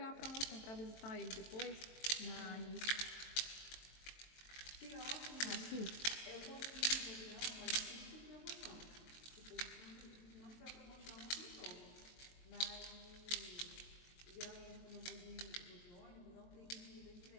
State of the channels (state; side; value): late; right; 23 ms